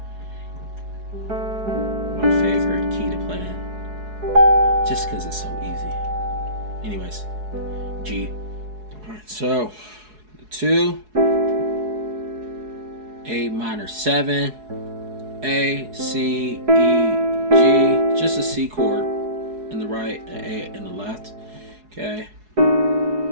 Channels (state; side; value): late; left; 4.7 ms